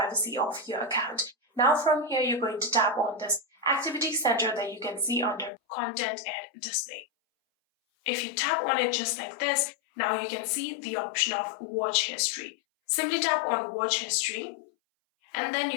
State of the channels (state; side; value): drops out; right; at 5.5 s